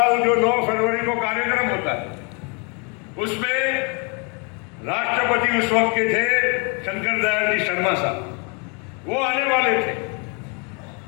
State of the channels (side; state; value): right; quieter; 34.3 dB